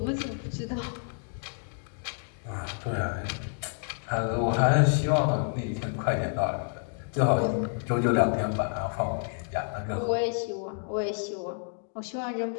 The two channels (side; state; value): right; silent; 58 dB below the other